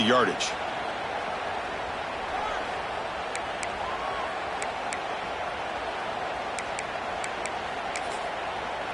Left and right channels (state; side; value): identical; both; correlation 1.00